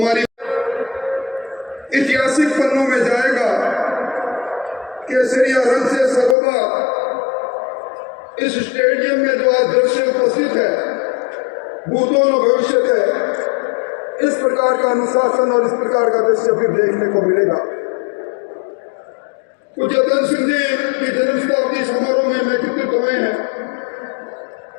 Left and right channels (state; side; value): drops out; right; at 6.4 s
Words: ऐतिहासिक पन्नों में जाएगा। केसरिया रंग से सर्वदा इस स्टेडियम में जो आज दृश्य उपस्थित है, भूतों और भविष्य है, इस प्रकार का अनुशासन और इस प्रकार का दृश्य फिर देखने को मिलेगा। पूज्य धन सिंह जी की जन्म शताब्दी समारोह में नेतृत्व हुए हैं।